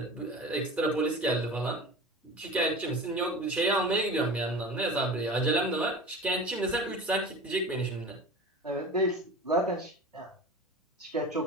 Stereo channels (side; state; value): both; normal; correlation 0.35